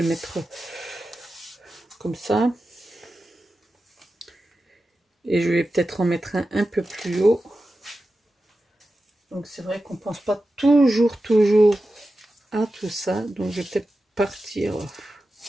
mettre comme ça. Et je vais peut-être en mettre un peu plus haut. Donc c'est vrai qu'on ne pense pas toujours à tout ça. Donc je vais peut-être partir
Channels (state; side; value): normal; both; correlation 0.92